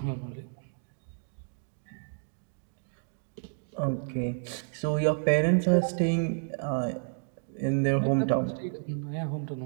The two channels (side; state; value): left; silent; 57 dB below the other